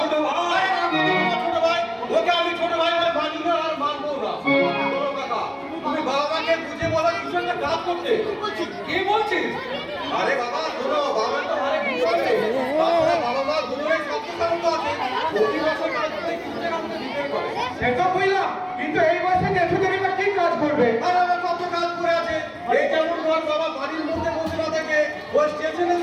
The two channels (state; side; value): identical; both; correlation 1.00